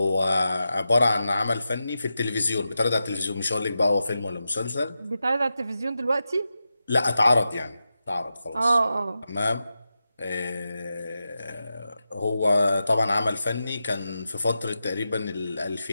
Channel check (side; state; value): both; inverted; correlation -0.90